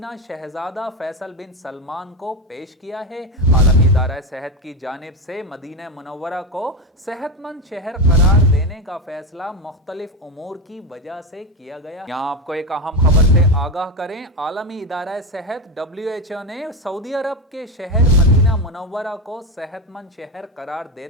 शहजादा फैसल बिन सलमान को पेश किया है। आलमी इदारा सेहत की जानिब से मदीना मुनव्वरा को सेहतमंद शहर करार देने का फैसला मुख्तलिफ उमूर की वजह से किया गया। यहाँ आपको एक अहम खबर से आगाह करें। आलमी इदारा सेहत WHO ने सऊदी अरब के शहर मदीना मुनव्वरा को सेहतमंद शहर करार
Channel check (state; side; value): normal; both; correlation 0.16